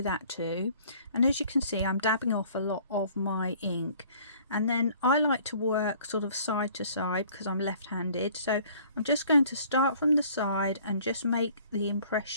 that too. And as you can see I'm dabbing off a lot of my ink, and then I like to work sort of side to side because I'm left-handed, so I'm just going to start from the side and just make the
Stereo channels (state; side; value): inverted; both; correlation -0.55